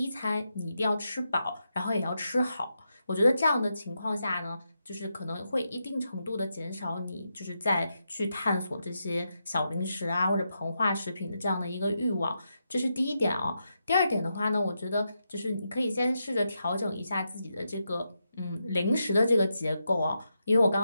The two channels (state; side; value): inverted; both; correlation -0.85